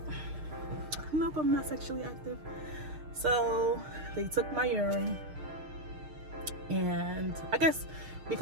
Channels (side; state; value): left; late; 6.5 ms